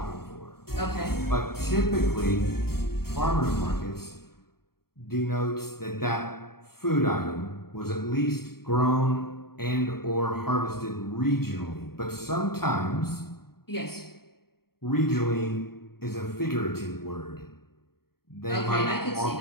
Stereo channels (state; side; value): late; right; 0.95 ms